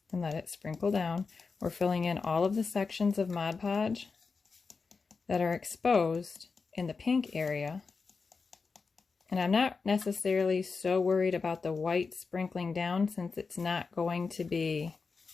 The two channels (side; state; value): right; quieter; 4.7 dB